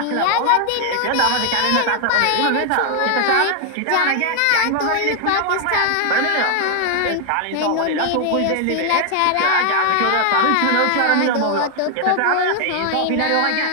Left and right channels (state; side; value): different; both; correlation 0.00